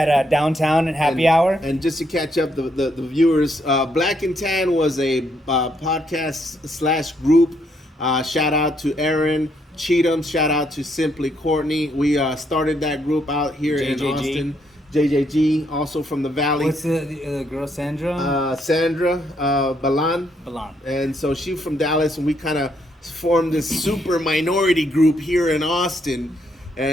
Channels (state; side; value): normal; both; correlation 0.74